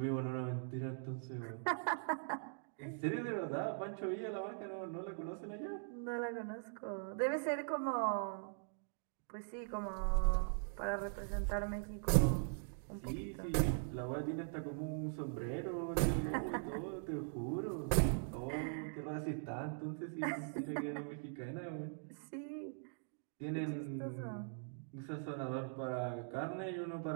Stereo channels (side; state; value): left; silent; digital silence